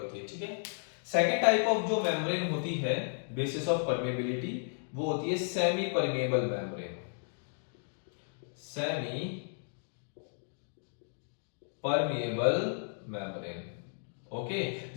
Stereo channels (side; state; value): right; silent; digital silence